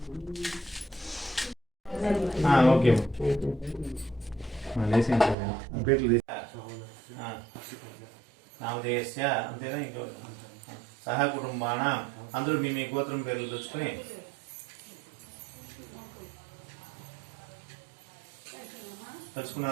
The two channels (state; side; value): drops out; left; at 5.4 s